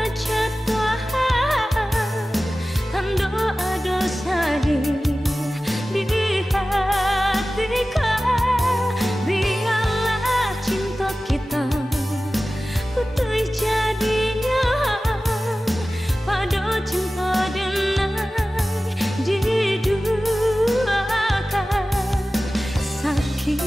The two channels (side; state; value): both; normal; correlation 0.96